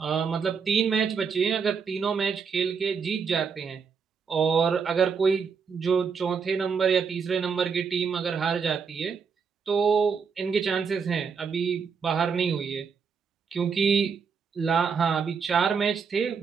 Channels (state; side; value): quieter; left; 5.9 dB